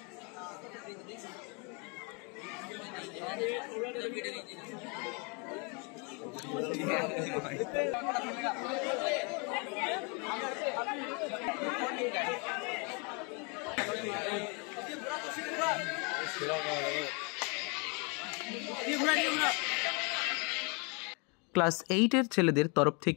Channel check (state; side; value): quieter; right; 33.2 dB